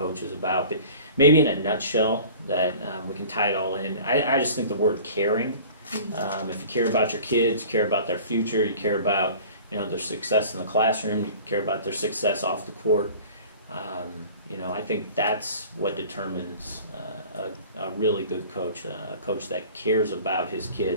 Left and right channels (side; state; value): both; inverted; correlation -0.44